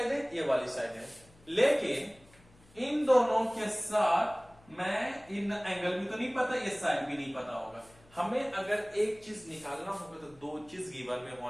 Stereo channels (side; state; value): left; noise; hum, 27 dB below the sound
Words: है, ये वाली साइड है, लेकिन इन दोनों के साथ मैं इन एंगल भी तो नहीं पता, ये साइड भी नहीं पता होगा। हमें अगर एक चीज निकालना होगा तो दो चीज गिवन में